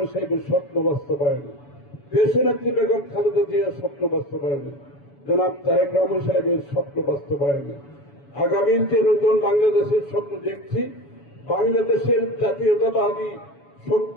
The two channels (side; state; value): right; late; 7.1 ms